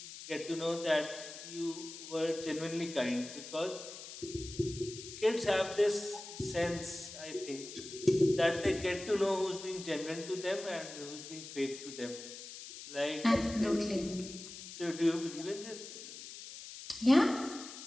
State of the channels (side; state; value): left; noise; hiss, 12 dB below the sound